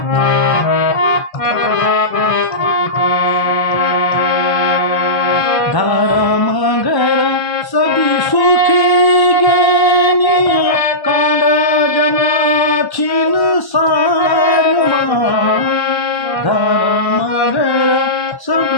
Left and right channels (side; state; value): right; late; 1.1 ms